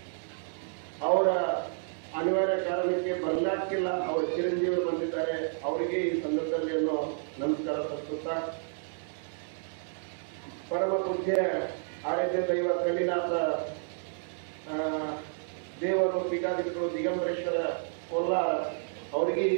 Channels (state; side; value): silent; left; digital silence